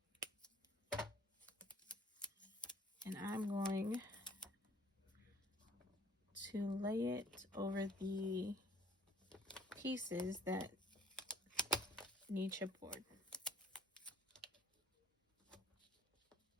and I'm going to lay it over the pieces that need chipboard.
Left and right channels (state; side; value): normal; both; correlation 0.57